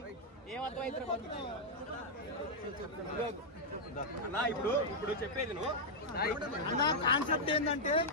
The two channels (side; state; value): both; normal; correlation -0.04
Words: ఏమర్థమైతే అన్నా. ఇప్పుడు చెప్పేది నువ్వు కాన్సెప్ట్ ఏంటంటే